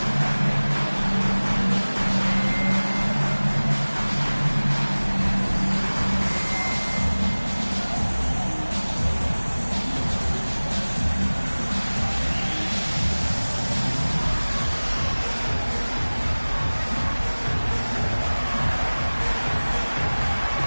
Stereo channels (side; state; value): both; inverted; correlation -1.00